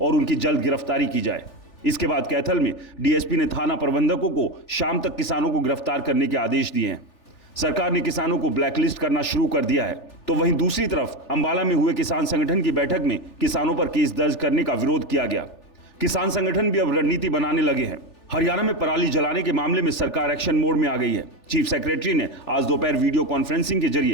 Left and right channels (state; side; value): late; right; 3.4 ms